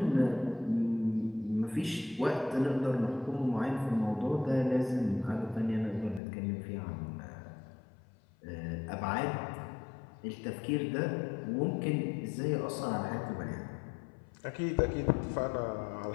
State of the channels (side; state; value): right; drops out; at 6.2 s